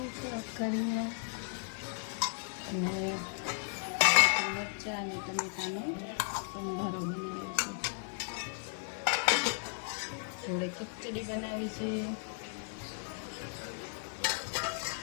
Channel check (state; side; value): silent; right; 54 dB below the other